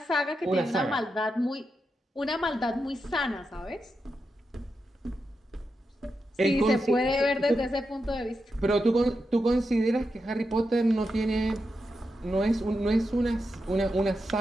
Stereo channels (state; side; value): normal; both; correlation 0.87